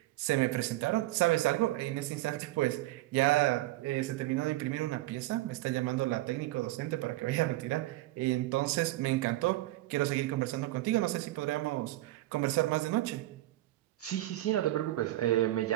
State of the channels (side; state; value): left; quieter; 17.0 dB